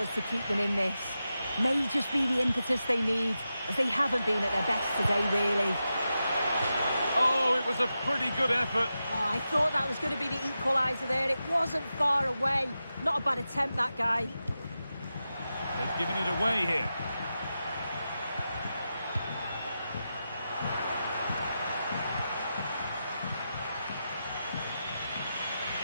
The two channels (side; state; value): both; inverted; correlation -0.90